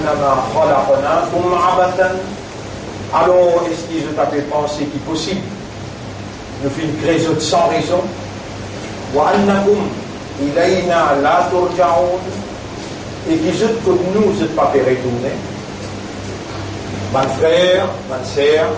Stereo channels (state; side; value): identical; both; correlation 1.00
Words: خلقناكم عبثا. Alors est-ce qu'ils ont tapé penser qu'il est possible de faire une création sans raison وأنكم إلينا لا ترجعون et qu'ils ont que nous ne pas fait retourner. Mon frère, ma sœur,